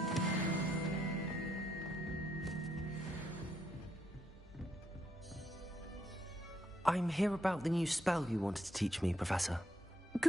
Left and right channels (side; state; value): both; normal; correlation 0.76